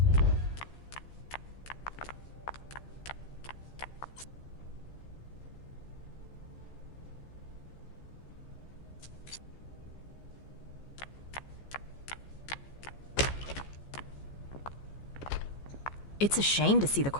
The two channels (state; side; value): late; right; 14 ms